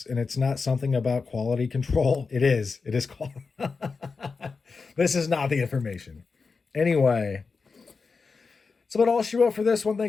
and it's not something about quality control. It is. It is quality. This is not the information. Anyway, so about all she wrote for this one.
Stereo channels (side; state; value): right; quieter; 4.7 dB